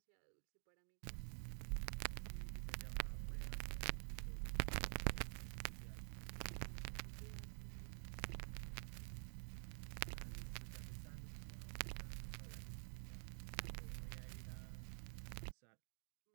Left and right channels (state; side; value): silent; left; digital silence